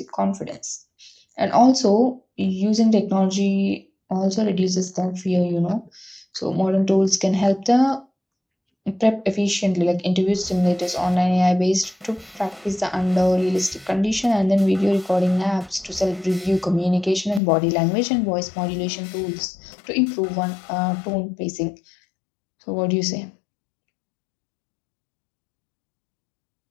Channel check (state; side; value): drops out; right; at 17.4 s